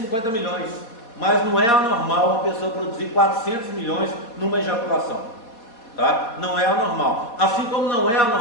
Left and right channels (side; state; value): right; late; 4.2 ms